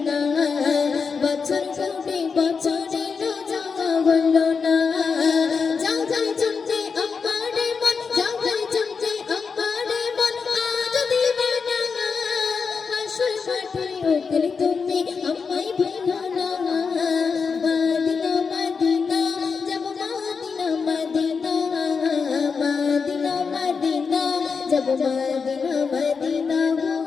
বছর ঘুরে বছর এলো যাওয়া হলো না যাও যাও চলতে আমারে মন যাও যাও চলতে আমারে মন আজ দিবানা আসল মাঠে উঠলে তুমি আমায় ভুলো না মদিনা মদিনা जब मदीना मदीना मदीना मदीना जब मदीना मदीना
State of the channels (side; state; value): right; quieter; 5.4 dB